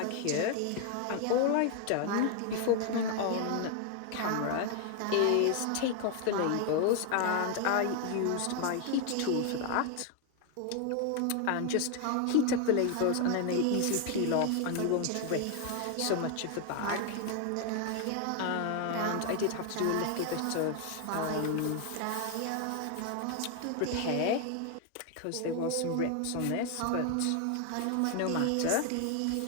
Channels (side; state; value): both; different; correlation 0.01